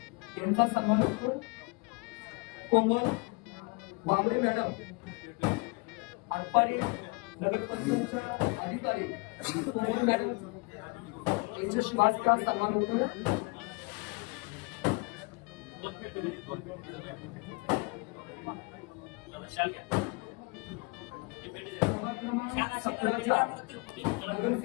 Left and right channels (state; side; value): quieter; right; 29.3 dB